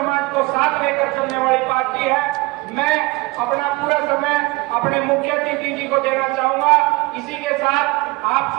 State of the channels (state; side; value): quieter; left; 23.0 dB